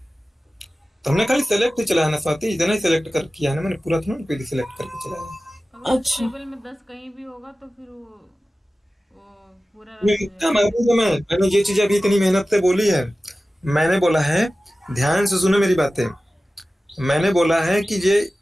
हमने खाली सेलेक्ट ही चलाया ना स्वाति, इतना ही सेलेक्ट कर किया है ना मैंने, पूरा थोड़ा पहले सेलेक्ट करके चलाया। अगर अच्छा। टेबल में 10 कहीं भी होगा तो फिर वो पूरा रन हो मैंने ये चीज अभी इतनी मेहनत से बोली है। मैंने बोला है, ध्यान से सुनो मेरी बातें। मैंने बोला है कि ये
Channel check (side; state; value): both; normal; correlation 0.96